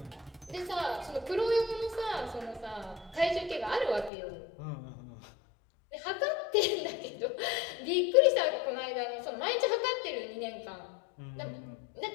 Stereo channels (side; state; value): right; drops out; at 4.1 s